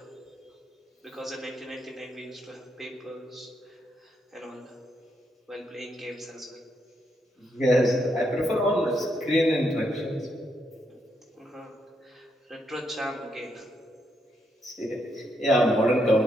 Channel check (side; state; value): both; normal; correlation 0.78